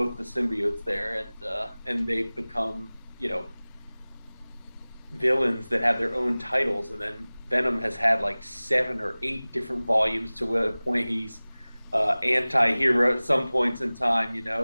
the symbiotes there, and they've become, villains that have their own titles. And then Venom has had like 7 or 8 different volumes to a point he's anti-hero at some points in time,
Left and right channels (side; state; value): both; inverted; correlation -0.99